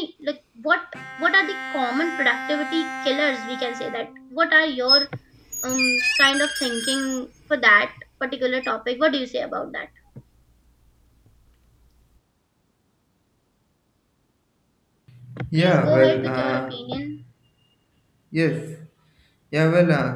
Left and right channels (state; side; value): identical; both; correlation 1.00